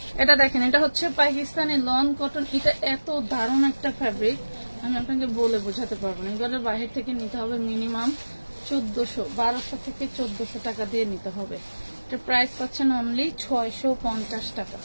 এটা দেখেন, এটা হচ্ছে পাকিস্তানি লন কটন। এটা এত দারুণ একটা ফ্যাব্রিক, আমি আপনাকে বলে বোঝাতে পারবো না। এগুলো বাইরে থেকে নিতে হবে মিনিমাম 1200 থেকে 1400 টাকা দিয়ে নিতে হবে। এটা প্রাইস পাচ্ছেন অনলি 650 টাকা,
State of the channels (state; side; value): inverted; both; correlation -1.00